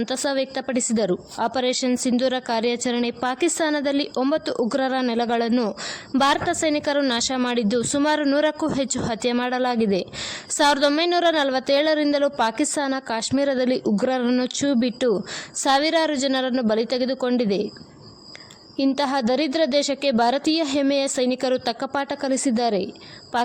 ವ್ಯಕ್ತಪಡಿಸಿದರು. ಆಪರೇಷನ್ ಸಿಂಧೂರ ಕಾರ್ಯಾಚರಣೆ ಪಾಕಿಸ್ತಾನದಲ್ಲಿ 9 ಉಗ್ರರ ನೆಲೆಗಳನ್ನು ಭಾರತ ಸೈನಿಕರು ನಾಶ ಮಾಡಿದ್ದು, ಸುಮಾರು 100ಕ್ಕೂ ಹೆಚ್ಚು ಹತ್ಯೆ ಮಾಡಲಾಗಿದೆ. 1947ರಿಂದಲೂ ಪಾಕಿಸ್ತಾನ ಕಾಶ್ಮೀರದಲ್ಲಿ ಉಗ್ರರನ್ನು ಛೂ ಬಿಟ್ಟು ಸಾವಿರಾರು ಜನರನ್ನು ಬಲಿ ತೆಗೆದುಕೊಂಡಿದೆ. ಇಂತಹ ದರಿದ್ರ ದೇಶಕ್ಕೆ ಭಾರತೀಯ ಹೆಮ್ಮೆಯ ಸೈನಿಕರು ತಕ್ಕ ಪಾಠ ಕಲಿಸಿದ್ದಾರೆ.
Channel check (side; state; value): both; identical; correlation 1.00